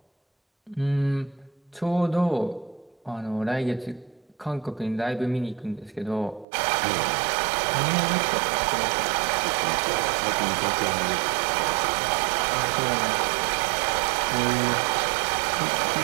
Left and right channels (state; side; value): drops out; left; at 6.5 s